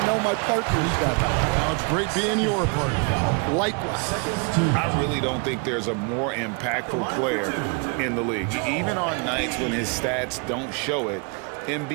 know my partners better. Well, it's great being your partner. Likewise. I really don't think there's a more impactful player in the league. Even on nights when his stats don't show it,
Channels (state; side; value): quieter; left; 34.5 dB